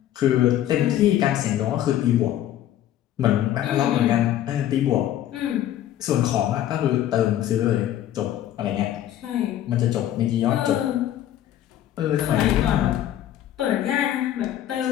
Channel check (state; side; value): quieter; right; 12.0 dB